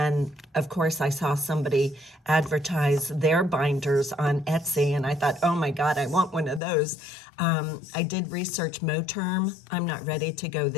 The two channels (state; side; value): drops out; right; at 6.6 s